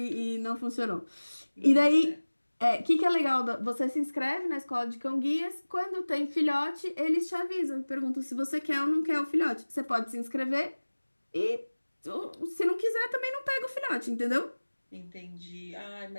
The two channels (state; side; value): inverted; both; correlation -1.00